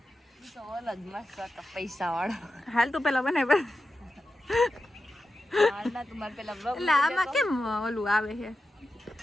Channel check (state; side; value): normal; both; correlation 0.91